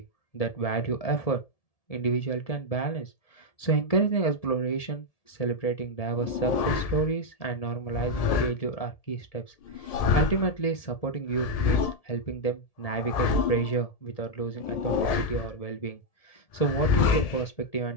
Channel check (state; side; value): late; right; 1.7 ms